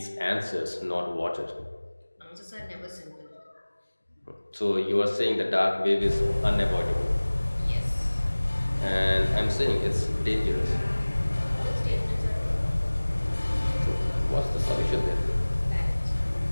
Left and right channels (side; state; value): both; inverted; correlation -1.00